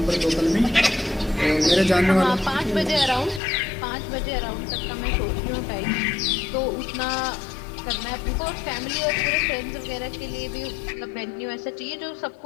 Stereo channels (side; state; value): right; drops out; at 3.4 s